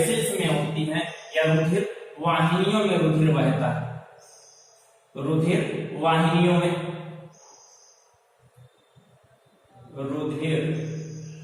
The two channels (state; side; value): identical; both; correlation 1.00